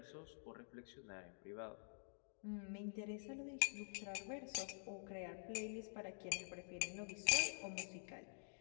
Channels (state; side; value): silent; right; digital silence